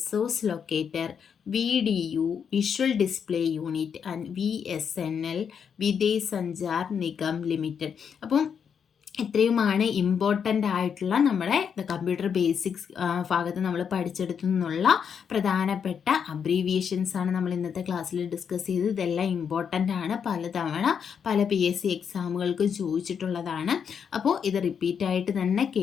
locator, VDU visual display unit and VSNL Videsh Sanchar Nigam limited. അപ്പം ഇത്രയുമാണ് important ആയിട്ടുള്ള നമ്മുടെ computer basics ഭാഗത്ത് നമ്മൾ പഠിച്ചെടുത്തു നിന്നുള്ള പ്രധാനപ്പെട്ട abbreviations ആണ് നമ്മൾ ഇന്നത്തെ ക്ലാസ്സിൽ ഡിസ്കസ് ചെയ്തത്. ഇതെല്ലാം ഇമ്പോർട്ടൻ്റ് ആണ്, പലതവണ പല PSC എക്സാമുകൾക്ക് ചോദിച്ചിട്ടുള്ളതാണ്. അപ്പോൾ ഇത് റിപ്പീറ്റായിട്ട് തന്നെ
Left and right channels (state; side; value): quieter; right; 7.2 dB